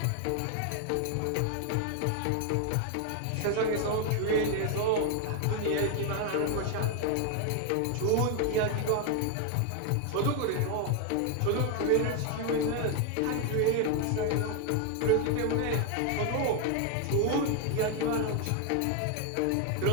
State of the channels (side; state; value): both; different; correlation 0.01